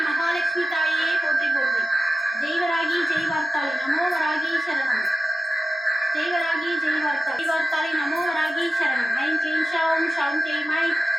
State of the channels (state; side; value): normal; both; correlation 0.94